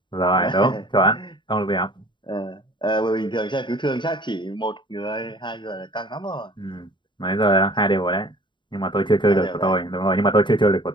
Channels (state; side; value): late; right; 0.23 ms